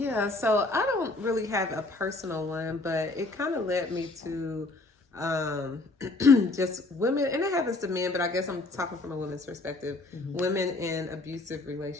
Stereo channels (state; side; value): quieter; right; 3.1 dB